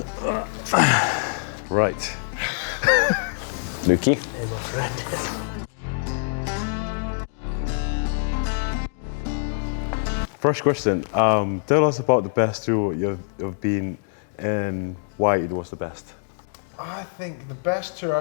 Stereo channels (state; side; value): silent; right; digital silence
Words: Right. Lukey. Here's my friend. First question, tell us about the best tour you've been and why it was the best. I think the best tour